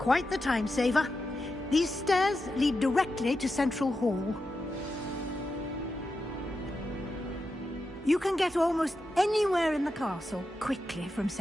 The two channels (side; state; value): both; normal; correlation 0.89